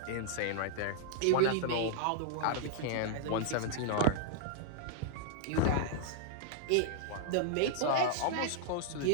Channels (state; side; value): different; both; correlation -0.01